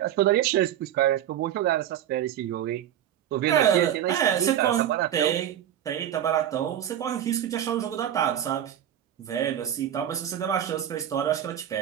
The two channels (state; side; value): quieter; left; 10.8 dB